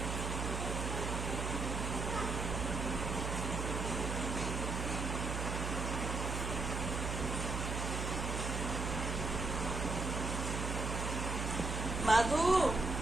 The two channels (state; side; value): noise; right; hum, 2 dB below the sound